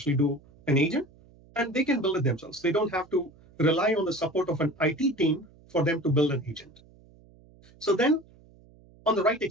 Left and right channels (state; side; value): noise; right; hum, 27 dB below the sound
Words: do an agent, and they can build it themselves. They don't have to rely on the support of an IT team for them to build an agent. So then on the right